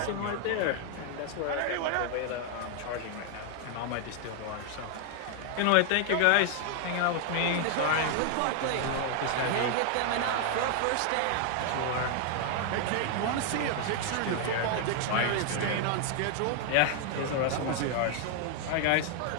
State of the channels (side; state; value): both; different; correlation 0.00